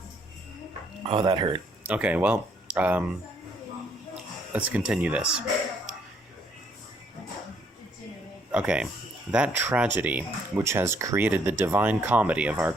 Oh, that hurt. Okay, well, let's continue this. Okay, that tragedy which has created the divine comedy of our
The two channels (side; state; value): both; normal; correlation 0.68